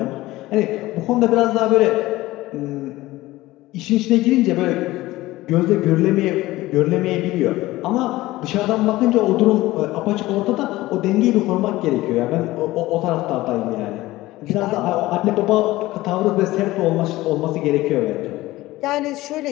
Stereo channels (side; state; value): right; quieter; 17.8 dB